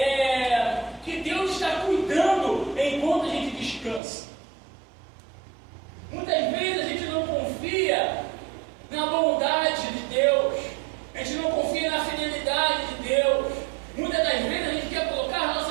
que Deus está cuidando enquanto a gente descansa. Muitas vezes a gente não confia na bondade de Deus, a gente não confia na fidelidade de Deus. Muitas das vezes a gente quer colocar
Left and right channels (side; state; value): left; drops out; at 4.0 s